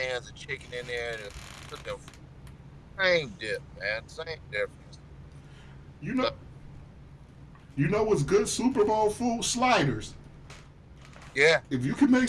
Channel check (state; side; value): identical; both; correlation 1.00